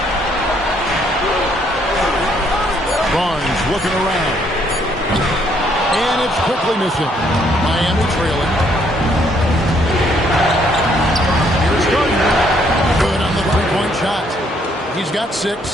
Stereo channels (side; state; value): both; normal; correlation 0.68